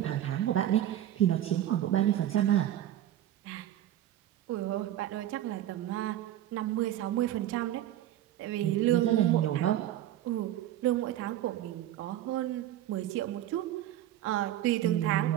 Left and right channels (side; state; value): left; quieter; 12.6 dB